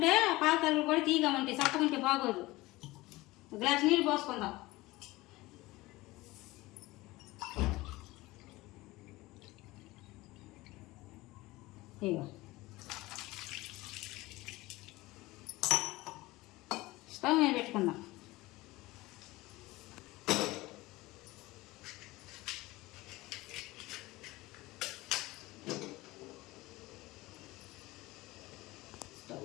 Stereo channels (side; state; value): right; quieter; 19.9 dB